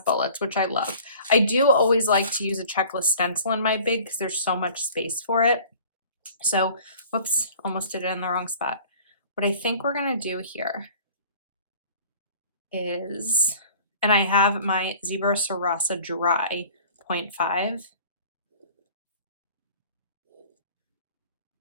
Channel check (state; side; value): inverted; both; correlation -0.48